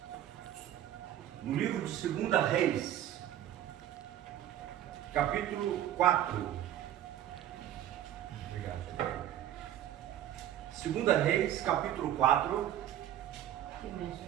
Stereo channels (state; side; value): quieter; left; 11.7 dB